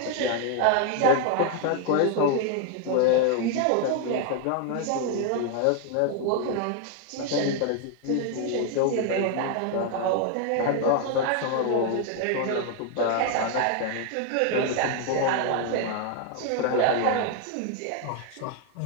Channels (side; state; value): both; different; correlation 0.00